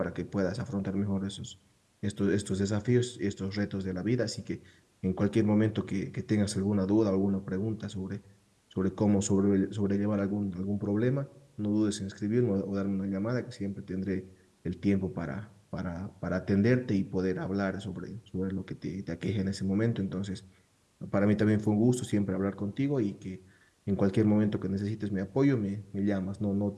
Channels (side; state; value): both; identical; correlation 1.00